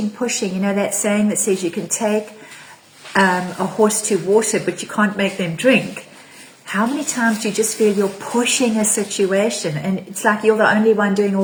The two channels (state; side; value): identical; both; correlation 1.00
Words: You know that saying that says you can take a horse to water, but you can't make them drink. How many times do you just feel you're pushing a situation and it's like you're the only one doing all